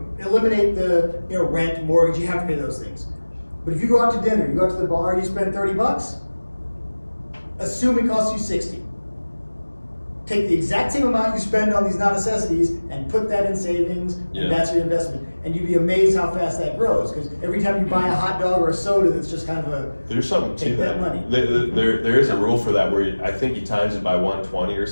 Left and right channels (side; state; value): both; inverted; correlation -1.00